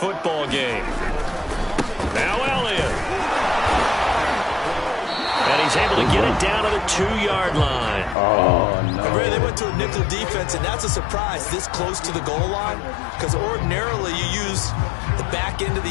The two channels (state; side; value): drops out; right; at 8.2 s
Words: game. Now Elliott. And he's able to get it down to the 2-yard line. Oh, no. They went to a nickel defense, and that's a surprise this close to the goal line, because ordinarily you use the back end of